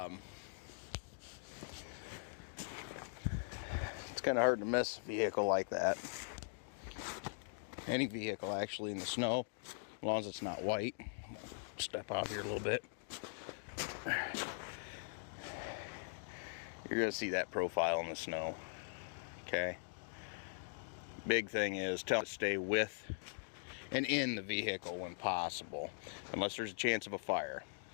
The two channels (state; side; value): silent; right; digital silence